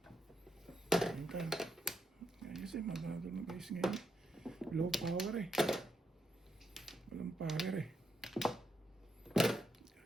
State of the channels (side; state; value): both; normal; correlation 0.81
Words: Ayun tayo. Ayos eh, magandang na guys ngayon. Low power eh. Walang power eh.